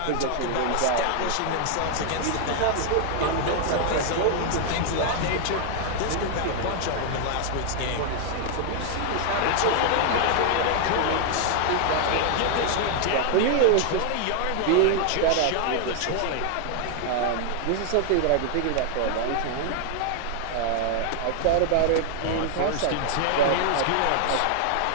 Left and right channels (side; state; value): both; different; correlation 0.00